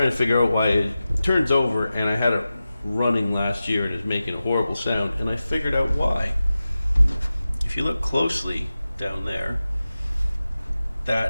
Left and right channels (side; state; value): both; inverted; correlation -0.94